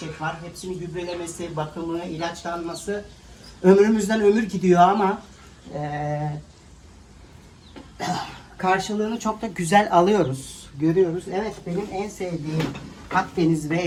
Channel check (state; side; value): identical; both; correlation 1.00